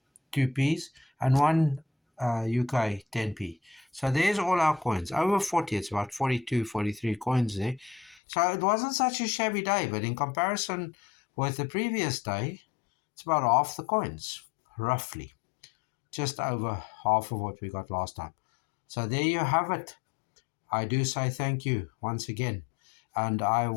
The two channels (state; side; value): drops out; right; at 8.2 s